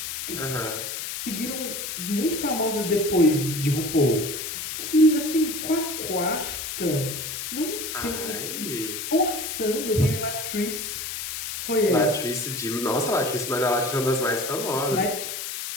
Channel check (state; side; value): noise; left; hiss, 5 dB below the sound